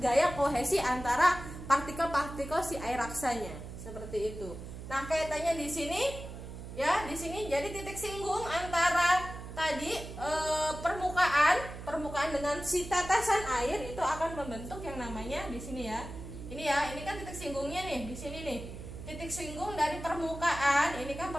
kohesi antara partikel-partikel si air raksanya. Seperti itu. Nah, kaitannya di sini ya, di sini jadi titik singgung antara tadi permukaan dengan si tetesan air itu akan membentuk yang namanya di sini ya. Ini ya, ini kan titik singgungnya nih di sini nih. Titik singgung dari permukaan, ini kan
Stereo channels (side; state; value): right; noise; hum, 11 dB below the sound